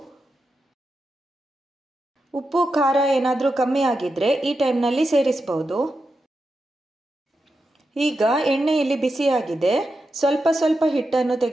ಉಪ್ಪು ಖಾರ ಏನಾದರೂ ಕಮ್ಮಿ ಆಗಿದ್ರೆ ಈ ಟೈಮ್ನಲ್ಲಿ ಸೇರಿಸಬಹುದು. ಈಗ ಎಣ್ಣೆ ಇಲ್ಲಿ ಬಿಸಿಯಾಗಿದೆ, ಸ್ವಲ್ಪ ಸ್ವಲ್ಪ ಹಿಟ್ಟನ್ನು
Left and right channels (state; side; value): normal; both; correlation 0.88